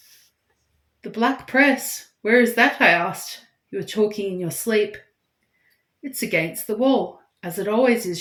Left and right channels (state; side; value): identical; both; correlation 1.00